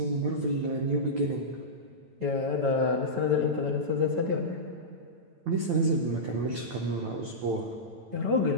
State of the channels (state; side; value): late; left; 9.0 ms